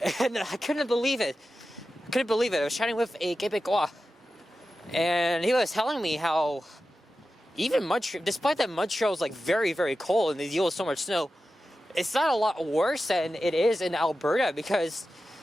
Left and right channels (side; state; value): both; normal; correlation 0.92